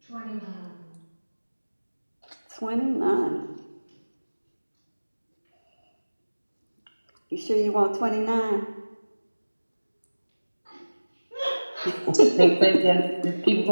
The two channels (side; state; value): both; inverted; correlation -1.00